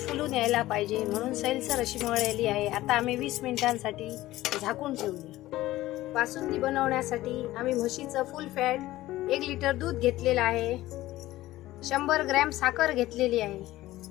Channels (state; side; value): quieter; right; 16.4 dB